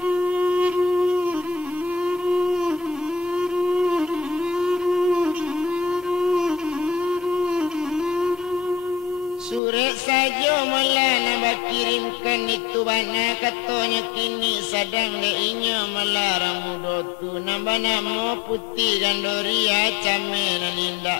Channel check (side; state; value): right; drops out; at 9.6 s